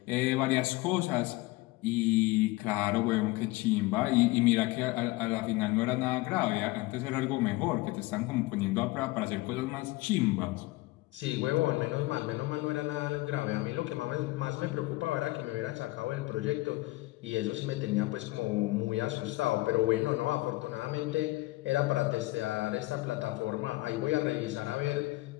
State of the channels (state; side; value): quieter; right; 20.5 dB